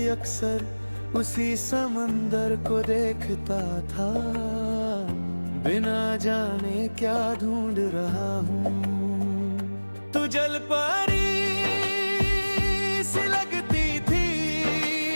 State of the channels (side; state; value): both; inverted; correlation -1.00